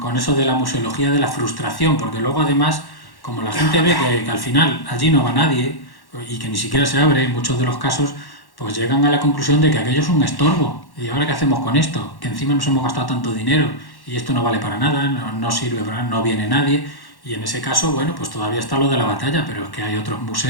eso de la museología de la frustración, porque luego además, como la gente ve que al final allí no va nadie y que ni siquiera se abre en muchos de los casos, pues llegan a la conclusión de que aquello es un estorbo. ¿Y ahora qué hacemos con esto? Que encima nos hemos gastado tanto dinero y esto no vale para nada, no sirve para nada, no viene nadie. Y en ese caso, bueno, pues todavía está lo de la batalla, pero es que hay otros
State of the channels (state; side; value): late; right; 1.1 ms